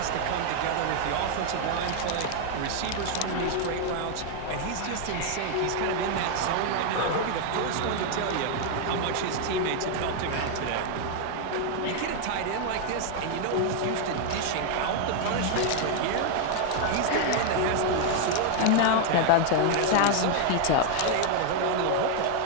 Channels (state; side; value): different; both; correlation 0.00